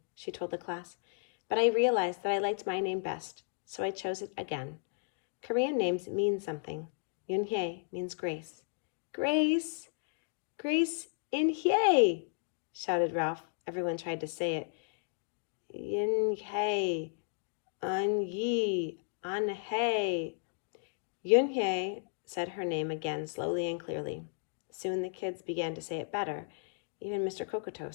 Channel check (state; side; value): silent; right; digital silence